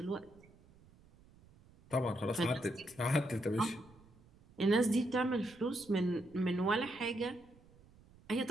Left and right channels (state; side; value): noise; right; rumble, 26 dB below the sound